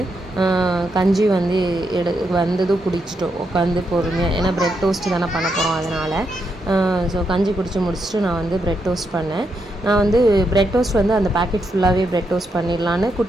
கஞ்சி வந்து வந்ததும் குடிச்சிட்டோம் உட்காந்து பொறுமையாக. ஏன்னா ப்ரெட் டோஸ்ட்டு தானே பண்ண போகிறோம் அதனால். ஸோ கஞ்சி குடிச்சு முடிச்சுட்டு நான் வந்து ப்ரெட் டோஸ்ட் பண்ணேன். நான் வந்து ப்ரெட் டோஸ்ட் வந்து அந்த பேக்கெட் ஃபுல்லாகவே ப்ரெட் டோஸ்ட் பண்ணிடலான்னு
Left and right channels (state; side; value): normal; both; correlation 0.81